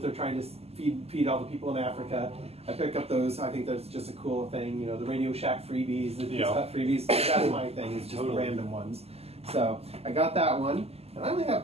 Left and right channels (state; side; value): late; left; 0.29 ms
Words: trying to feed all the people in Africa. I pick up those. I think that's just a cool thing. The Radio Shack freebies, the cut freebies. That's my thing. It's just the random ones. So I got that one. And I only